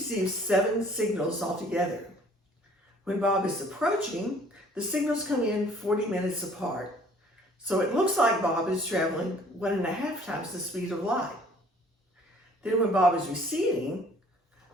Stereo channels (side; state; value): both; normal; correlation 0.55